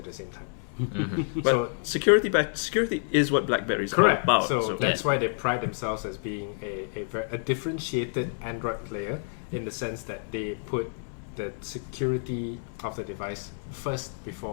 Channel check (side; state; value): right; silent; 59 dB below the other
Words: the same time. But So security is what BlackBerry is correct. all about. So that's why they pride themselves as being a differentiated Android player in the sense that they put the security of the device first